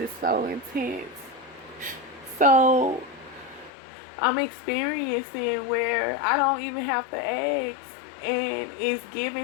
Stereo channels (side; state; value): right; drops out; at 3.7 s